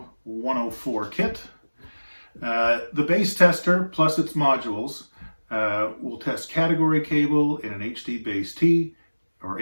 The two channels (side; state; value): both; inverted; correlation -1.00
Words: 104 kit. The base tester plus its modules will test category cable in an HD-Base-T or